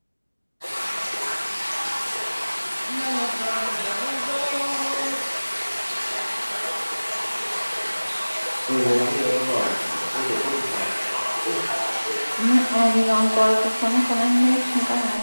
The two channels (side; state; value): both; inverted; correlation -1.00